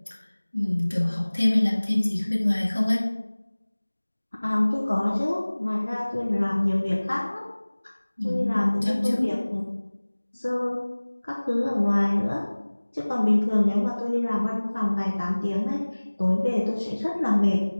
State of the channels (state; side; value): inverted; both; correlation -1.00